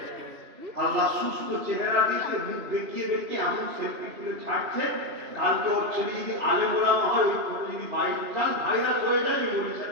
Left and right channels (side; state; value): left; late; 2.9 ms